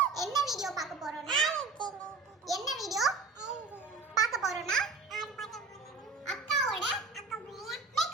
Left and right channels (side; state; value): left; quieter; 4.3 dB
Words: என்ன வீடியோ பார்க்க போறோம்னா என்ன வீடியோ பார்க்க போறோம்னா அக்காவோட